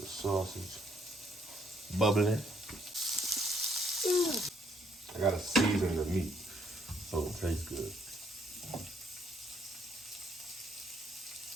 sausage bubbling. I gotta season the meat so it tastes good.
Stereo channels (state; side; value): normal; both; correlation 0.69